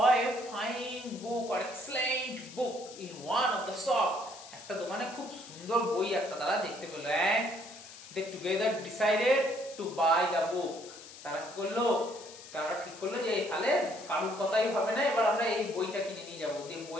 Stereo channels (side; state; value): left; noise; hiss, 16 dB below the sound